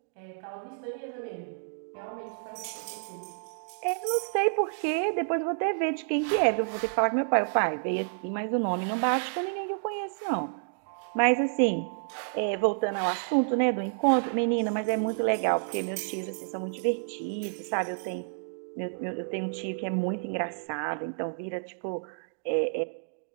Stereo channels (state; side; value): silent; left; digital silence